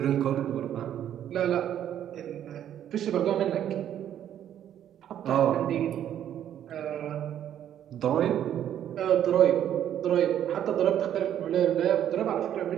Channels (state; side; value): quieter; left; 10.5 dB